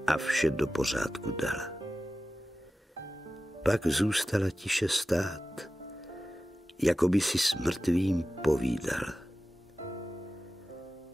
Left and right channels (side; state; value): both; normal; correlation 0.94